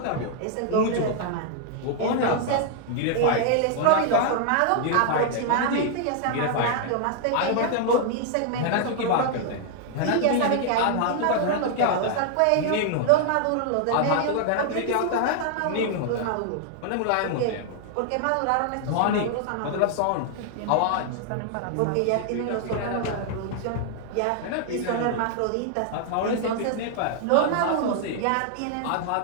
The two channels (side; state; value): both; different; correlation -0.01